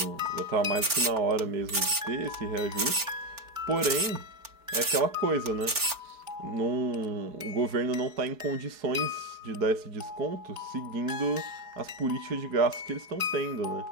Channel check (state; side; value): late; left; 4.4 ms